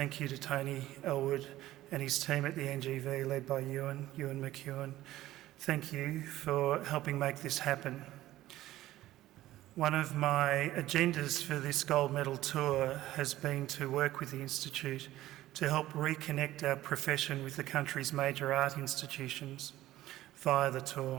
you to Tony Elwood and his team at the NGV, led by Ewan McEwen. Thank you for helping make this happen. One of my agendas for this gold medal tour has been to work with the Institute to help reconnect our profession with the country's major art institutions via the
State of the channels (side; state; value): left; quieter; 15.2 dB